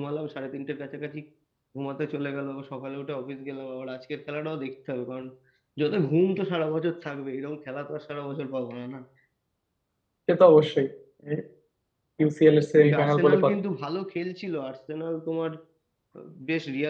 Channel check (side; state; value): both; identical; correlation 1.00